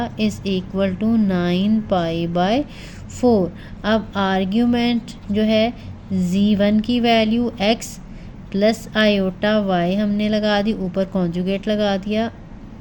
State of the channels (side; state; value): both; identical; correlation 1.00